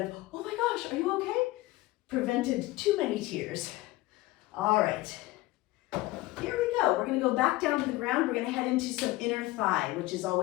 of, oh my gosh, are you okay? Prevented too many tears. All right, here we go. We're gonna go back down to the ground. We're gonna head into some inner thigh, which is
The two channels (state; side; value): quieter; right; 18.9 dB